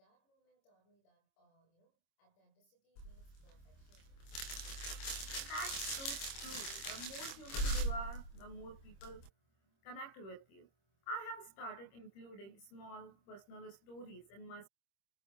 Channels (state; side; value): late; right; 26 ms